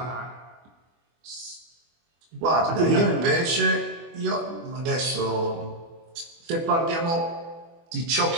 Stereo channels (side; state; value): left; late; 24 ms